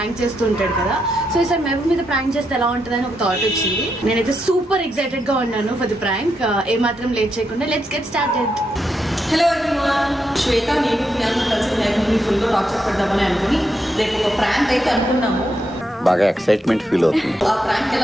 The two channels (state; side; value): normal; both; correlation 0.82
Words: చేస్తూ ఉంటాడు కదా. సో ఈసారి మహబూబ్ మీద ప్రాంక్ చేస్తే ఎలా ఉంటుందని ఒక థాట్ వచ్చింది. నేనైతే సూపర్ ఎక్సైటెడ్ గా ఉన్నాను ఫర్ ది ప్రాంక్. ఏమాత్రం లేట్ చేయకుండా let's get started. Hello everyone, Shweta నేను ప్రియాంక కలిసి మహబూబ్ని ఫుల్గా టార్చర్ పెడదామని అనుకుని రేపు ఒక ప్రాంక్ అయితే అనుకున్నాము. బాగా ఎక్సైట్మెంట్ ఫీల్ అవుతుంది. ఆ ప్రాంక్